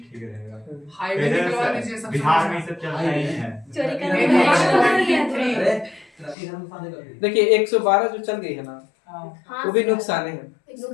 ठीक रहेगा। हाईवे निकलवा दीजिए सब, बिहार में सब चलता ही है चोरी करने देखिए 112 जो चल गई है ना वो भी नुकसान है,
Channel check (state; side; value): drops out; right; at 6.4 s